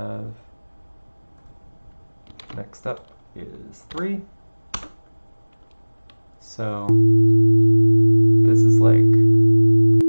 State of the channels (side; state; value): both; inverted; correlation -1.00